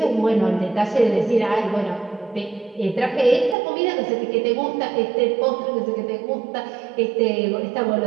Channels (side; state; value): left; drops out; at 3.6 s